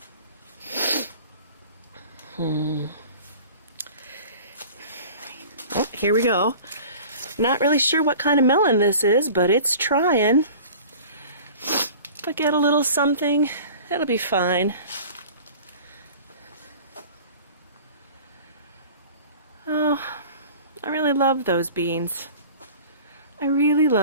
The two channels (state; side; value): inverted; both; correlation -0.42